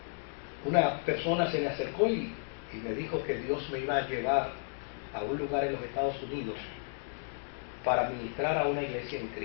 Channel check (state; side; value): silent; right; 56 dB below the other